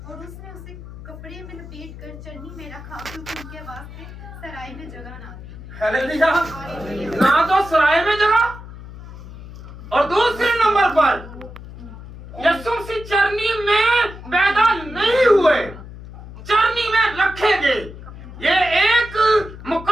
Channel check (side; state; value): left; noise; hum, 14 dB below the sound